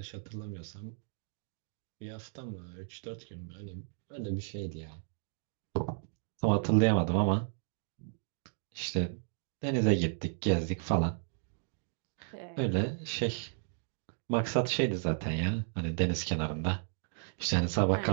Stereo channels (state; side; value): silent; left; digital silence